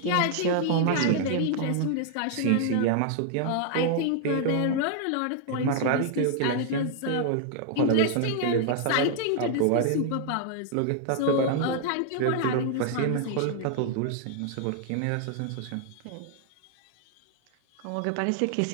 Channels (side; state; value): both; different; correlation 0.00